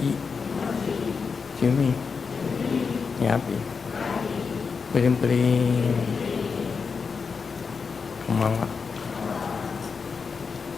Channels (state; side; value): quieter; right; 5.3 dB